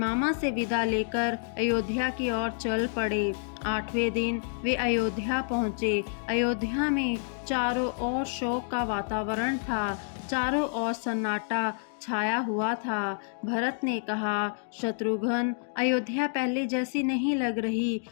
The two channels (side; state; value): right; silent; digital silence